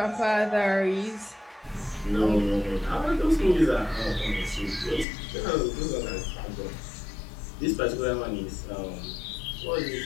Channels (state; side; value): drops out; right; at 5.1 s